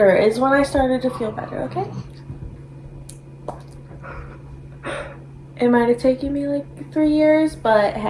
is when I started to feel better, okay? It might have taken me like 3 years, but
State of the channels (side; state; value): both; identical; correlation 1.00